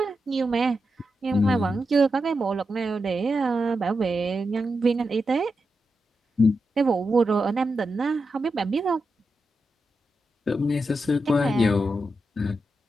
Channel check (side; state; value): both; normal; correlation 0.88